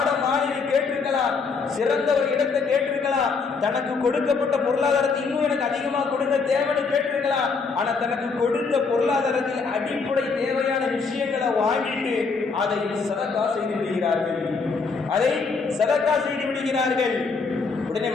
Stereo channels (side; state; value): right; quieter; 4.8 dB